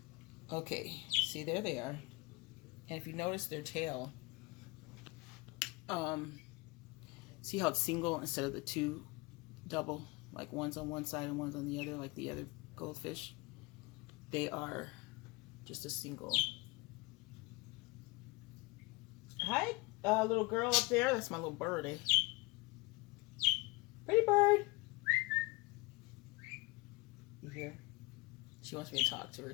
Okay, see, there they are. And if you notice their tail, see how it's single instead of the two double, like one's on one side and one's on the other, like the other goldfish? They are just a single. Hi, little girl up there. That's my little birdie. Pretty bird. You hear? She wants me to talk to her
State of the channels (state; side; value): quieter; right; 23.6 dB